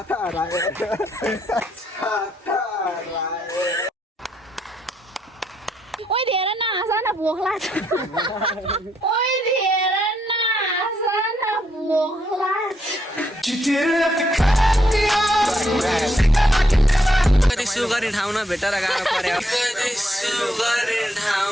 ओइ धेरै नहाँस न भोक लाग्छ कति सुगरी ठाउँ न भेटेर गाह्रो पर्यो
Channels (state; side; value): normal; both; correlation 0.76